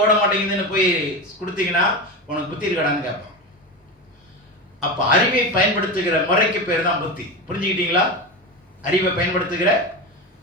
ஓட மாட்டேங்குதுன்னு போய் கொடுத்தீங்கன்னா உனக்கு புத்தி இருக்கடான்னு கேட்பான். அப்போ அறிவை பயன்படுத்துகிற முறைக்கு பேர் தான் புத்தி. புரிஞ்சுக்கிட்டீங்களா? அறிவை பயன்படுத்துகிற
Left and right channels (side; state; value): both; normal; correlation 0.21